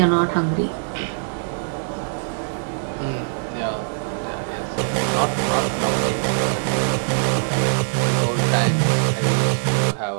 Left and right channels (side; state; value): left; silent; digital silence